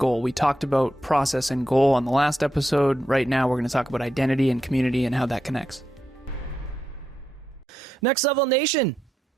We talked about process and goal on the last episode. Right now, we're going to talk about identity and community and how that connects. Next Level Nation.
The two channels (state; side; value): normal; both; correlation 0.84